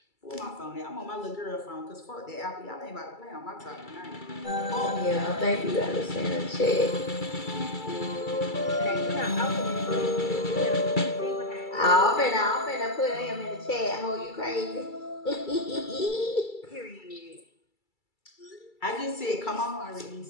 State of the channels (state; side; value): late; right; 2.3 ms